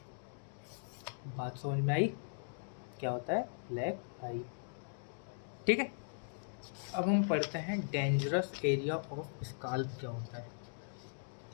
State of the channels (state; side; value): silent; right; digital silence